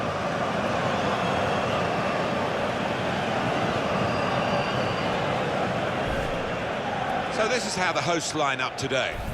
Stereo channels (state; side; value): identical; both; correlation 1.00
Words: So this is how the hosts line up today.